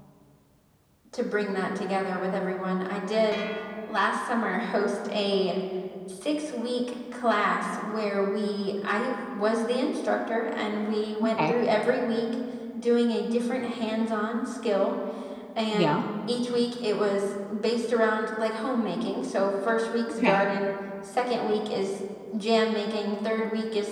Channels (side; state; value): both; identical; correlation 1.00